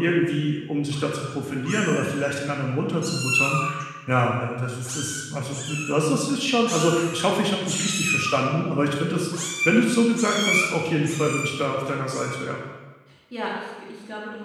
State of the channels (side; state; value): both; identical; correlation 1.00